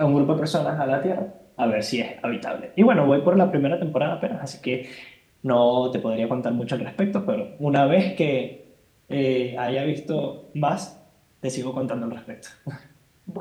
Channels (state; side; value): identical; both; correlation 1.00